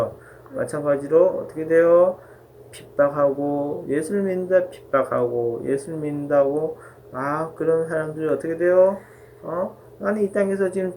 마찬가지로 어떻게 돼요? 핍박하고 예수를 믿는다 핍박하고 예수를 믿는다고 그런 사람들이 어떻게 돼요? 나는 이 땅에서 지금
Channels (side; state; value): both; identical; correlation 1.00